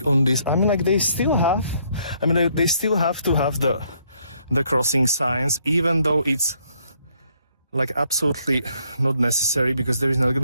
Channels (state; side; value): inverted; both; correlation -0.69